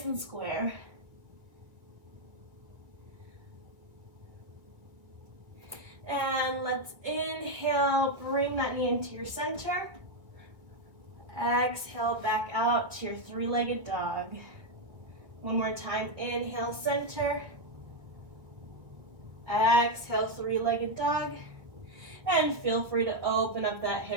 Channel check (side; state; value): left; late; 1.7 ms